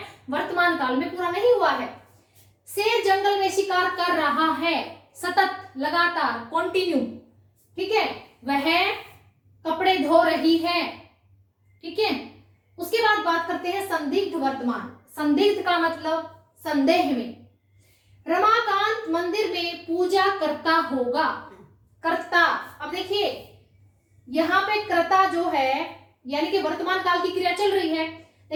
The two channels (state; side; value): identical; both; correlation 1.00